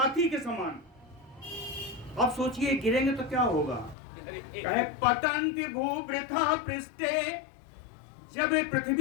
के समान। अब सोचिए गिरेंगे तो क्या होगा? कहे पतंति भूवृथा पृष्ठे, जब ये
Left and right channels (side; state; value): right; drops out; at 4.0 s